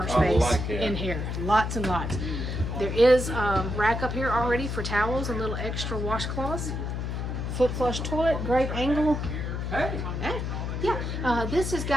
space in here, lots and lots. There is a rack up here already for towels and little extra washcloths. Foot flush toilet, great angle. Hey. Yeah, this has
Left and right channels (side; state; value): left; noise; hum, 3 dB below the sound